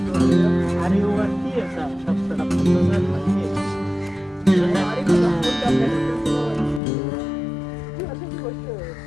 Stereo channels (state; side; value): drops out; right; at 6.8 s